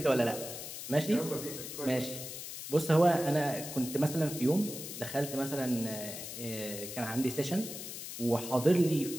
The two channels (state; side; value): noise; left; hiss, 9 dB below the sound